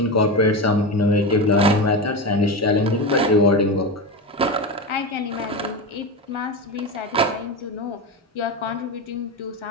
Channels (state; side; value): normal; both; correlation 0.20